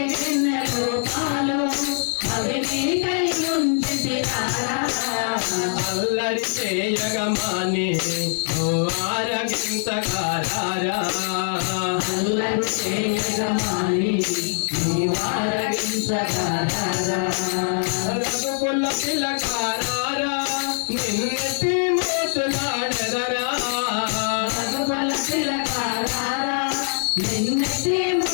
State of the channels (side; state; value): right; silent; digital silence